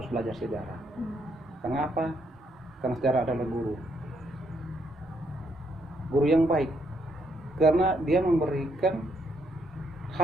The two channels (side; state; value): both; normal; correlation 0.74